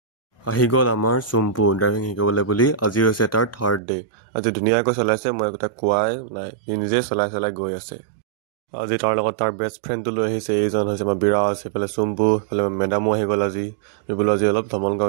আহি গ'ল আমাৰ চুম্পু ড্ৰাইভিং শিকিবলৈ বুলি আজি হৈছে তাৰ থাৰ্ড ডে আজি ধুনীয়াকৈ চলাইছে মই একোটা কোৱাই নাই নিজে চলাই গৈ আছে আজি তাৰ লগত তাৰ বেষ্ট ফ্ৰেণ্ডটো লৈ আহিছে এইজন হৈছে আমাৰ বিৰাজ সেইফালে চুম্পু সেইফালে মেডামো আহি গ'ল আজি আমি বোলো আজি অলপ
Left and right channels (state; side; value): drops out; left; at 3.8 s